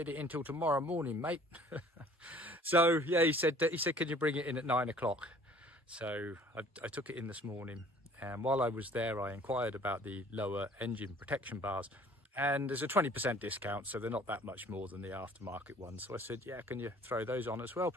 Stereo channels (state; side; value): normal; both; correlation 0.53